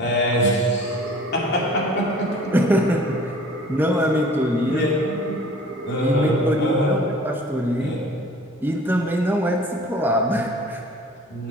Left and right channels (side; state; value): both; normal; correlation 0.48